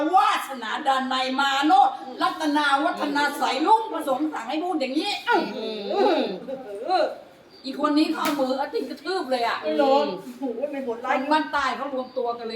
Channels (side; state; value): both; identical; correlation 1.00